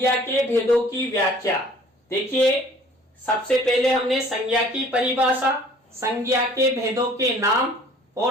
के भेदों की व्याख्या। देखिए सबसे पहले हमने संज्ञा की परिभाषा, संज्ञा के भेदों के नाम,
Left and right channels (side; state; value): both; normal; correlation 0.53